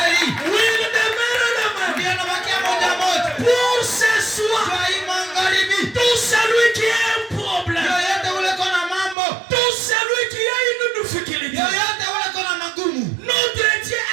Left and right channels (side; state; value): left; drops out; at 9.2 s